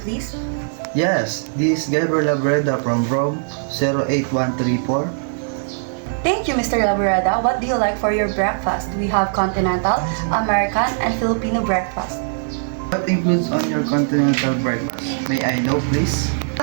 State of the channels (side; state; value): left; silent; digital silence